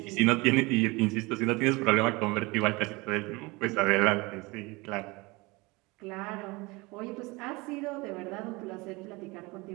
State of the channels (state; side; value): quieter; left; 24.4 dB